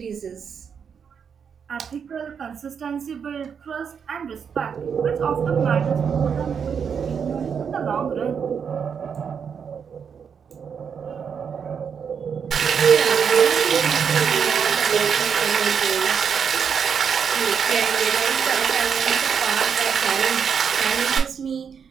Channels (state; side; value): quieter; left; 6.9 dB